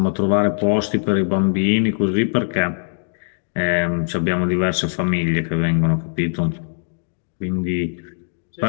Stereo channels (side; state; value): right; silent; digital silence